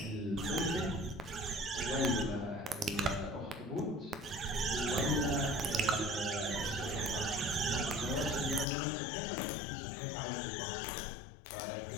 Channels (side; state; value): right; drops out; at 8.7 s